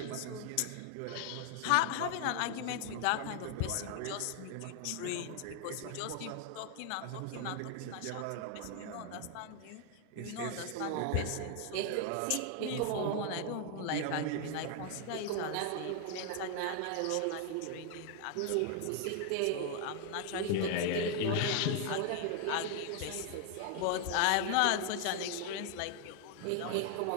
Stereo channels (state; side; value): different; both; correlation 0.00